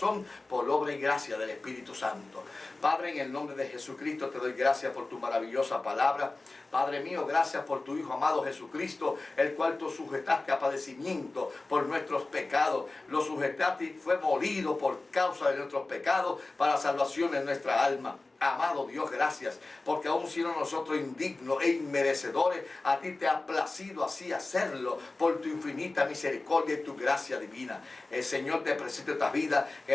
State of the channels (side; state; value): right; quieter; 3.2 dB